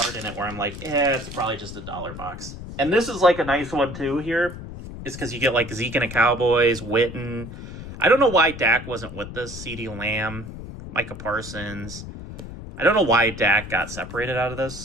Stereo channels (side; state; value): left; noise; rumble, 11 dB below the sound